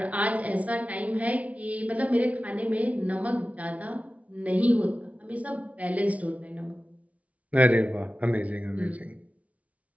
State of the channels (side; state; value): left; late; 0.067 ms